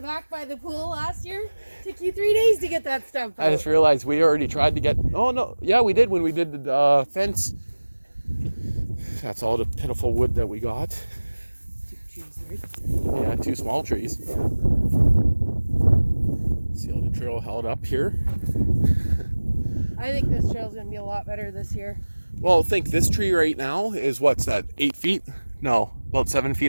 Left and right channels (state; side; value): inverted; both; correlation -1.00